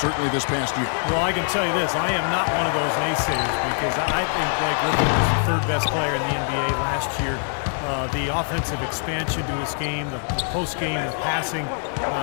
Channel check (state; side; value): silent; right; 61 dB below the other